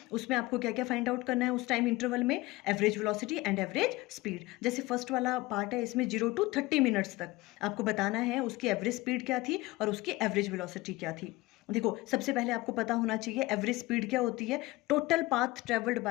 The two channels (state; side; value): quieter; right; 20.1 dB